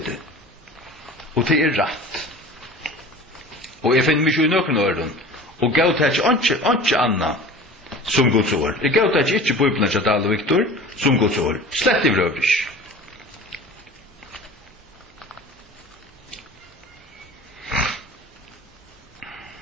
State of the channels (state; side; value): normal; both; correlation 0.40